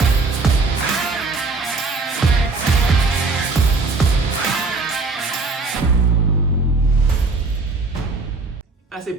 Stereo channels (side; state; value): left; quieter; 3.8 dB